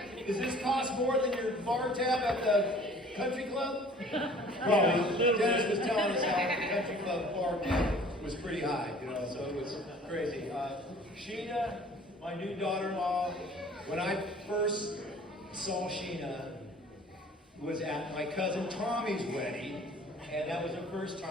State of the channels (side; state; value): both; normal; correlation 0.50